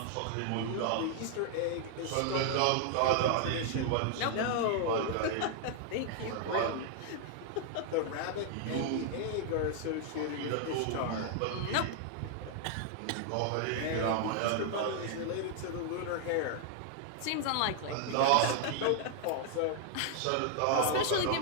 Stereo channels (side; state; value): both; different; correlation 0.00